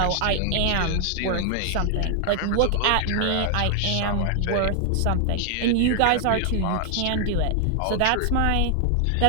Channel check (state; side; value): different; both; correlation 0.00